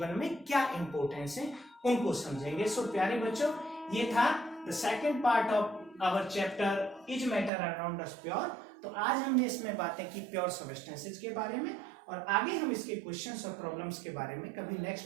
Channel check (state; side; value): drops out; left; at 7.5 s